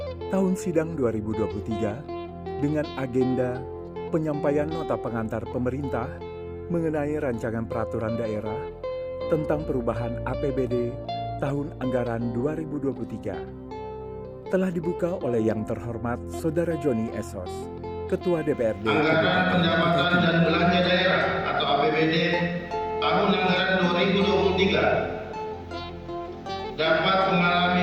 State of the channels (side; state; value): both; identical; correlation 1.00